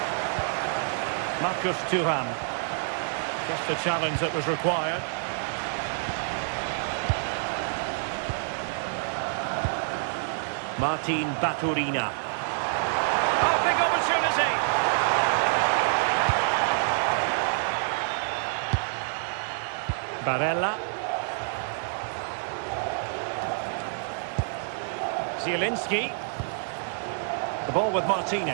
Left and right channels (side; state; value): left; silent; digital silence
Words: Marcus Thuram. Just the challenge that was required. Martin Baturina. Oh, big opportunity! Barella. Zielinski. The ball with